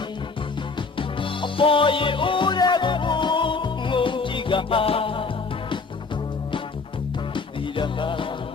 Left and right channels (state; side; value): quieter; right; 4.4 dB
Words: အပေါ်ရီဦးတဲ့ကိုငုံကြည့်ကသီရဟာ